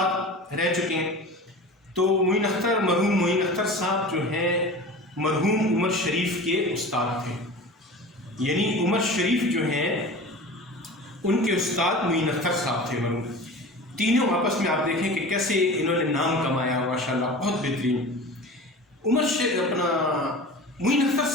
رہ چکے ہیں۔ تو معین اختر، مرحوم معین اختر صاحب جو ہیں مرحوم عمر شریف کے استاد تھے، یعنی عمر شریف جو ہیں ان کے استاد معین اختر صاحب تھے مرحوم۔ تینوں آپس میں آپ دیکھیں کہ کیسے انہوں نے نام کمایا، ماشاءاللہ بہت بہترین۔ معین اختر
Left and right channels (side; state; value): both; normal; correlation 0.35